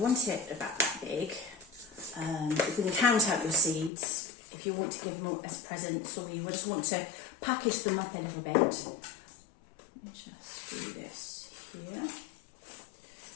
want it about that big. You can count out your seeds if you want to give them as presents, or you just want to package them up a little bit. Let me just do this here.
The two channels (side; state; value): right; drops out; at 3.9 s